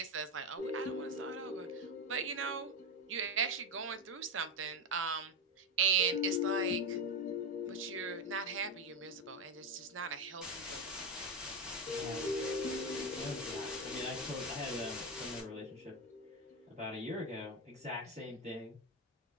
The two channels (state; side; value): normal; both; correlation 0.10